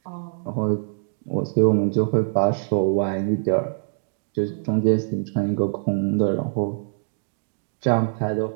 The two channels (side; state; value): left; silent; digital silence